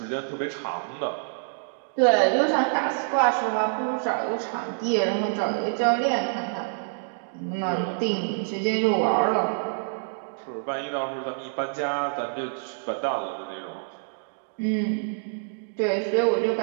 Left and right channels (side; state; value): left; silent; digital silence